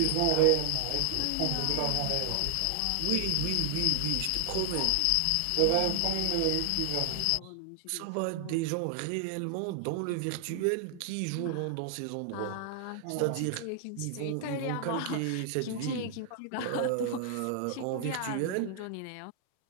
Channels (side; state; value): both; different; correlation 0.00